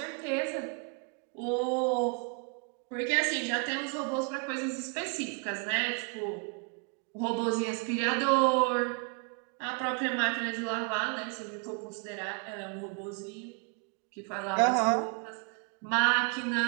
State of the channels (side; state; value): left; quieter; 36.9 dB